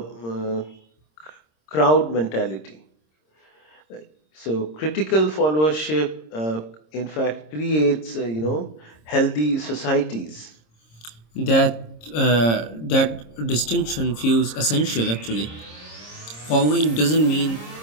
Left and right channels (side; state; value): right; late; 26 ms